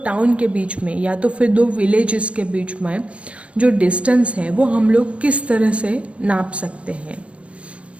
टाउन के बीच में या तो फिर दो विलेजेस के बीच में जो डिस्टेंस है वो हम लोग किस तरह से नाप सकते हैं।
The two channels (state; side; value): late; left; 0.061 ms